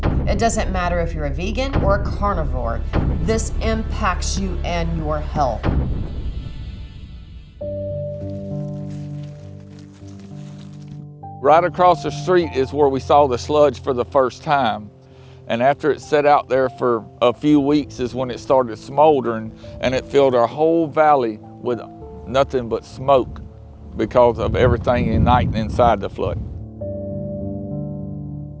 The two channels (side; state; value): both; identical; correlation 1.00